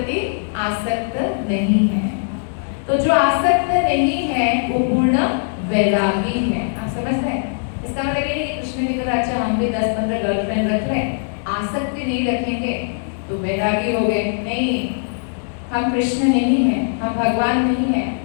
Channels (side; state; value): right; silent; digital silence